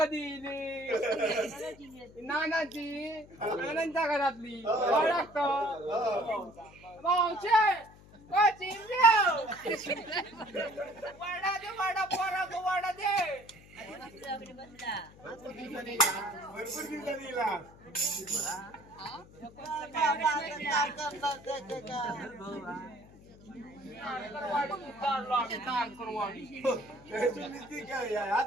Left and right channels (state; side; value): noise; left; hum, 22 dB below the sound